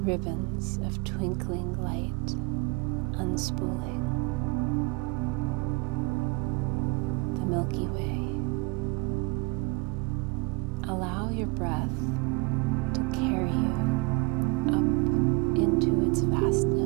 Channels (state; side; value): quieter; left; 27.6 dB